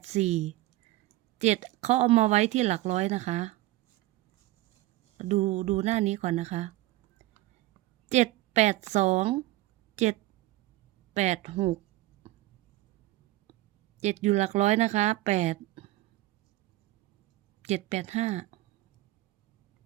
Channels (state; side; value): quieter; left; 17.7 dB